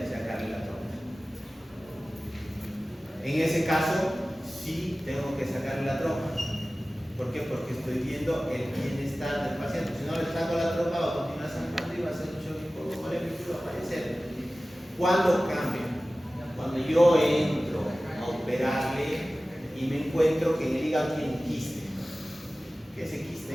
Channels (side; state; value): both; normal; correlation 0.97